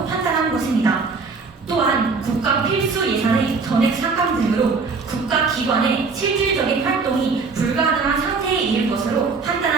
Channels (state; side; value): quieter; left; 4.5 dB